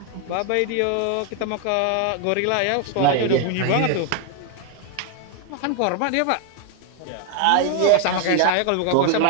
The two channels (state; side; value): different; both; correlation 0.00